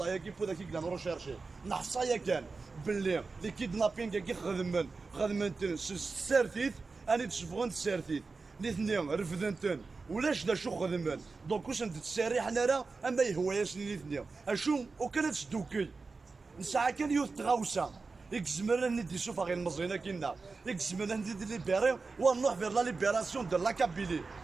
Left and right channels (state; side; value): quieter; left; 4.1 dB